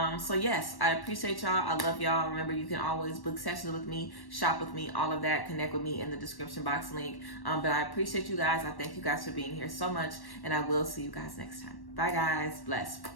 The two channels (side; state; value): right; late; 1.1 ms